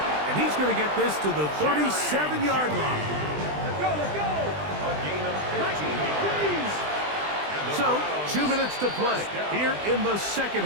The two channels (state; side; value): late; left; 20 ms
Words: And he's going to get this to the 37-yard line. Let's go. A gain of 15 yards. So, 2 minutes to play here in the 2nd